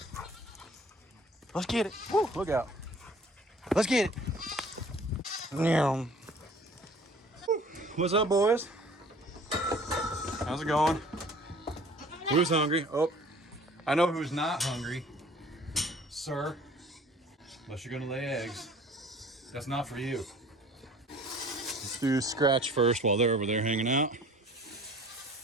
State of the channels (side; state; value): both; normal; correlation 0.50